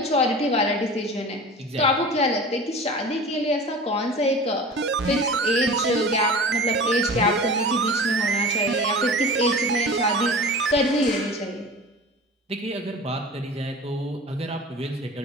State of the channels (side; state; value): both; normal; correlation 0.36